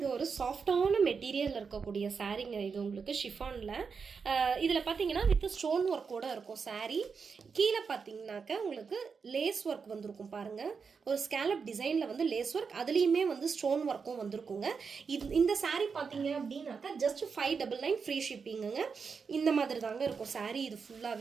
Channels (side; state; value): left; quieter; 5.6 dB